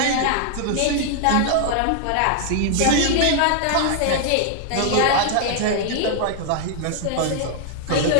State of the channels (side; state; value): both; different; correlation 0.00